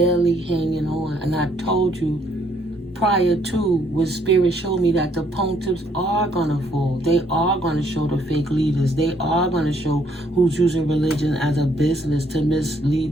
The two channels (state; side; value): normal; both; correlation 0.68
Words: hanging on. And I told you, prior to, when Spirit showed me that the pontiffs are going to fall. They are going to show the fake leaders. They are going to show who's using religion as a business to